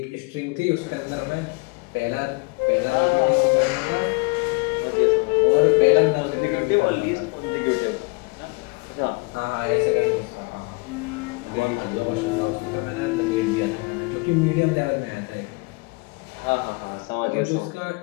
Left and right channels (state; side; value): quieter; right; 28.9 dB